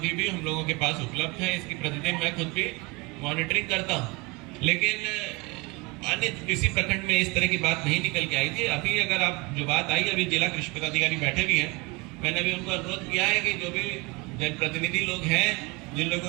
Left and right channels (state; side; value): quieter; left; 26.3 dB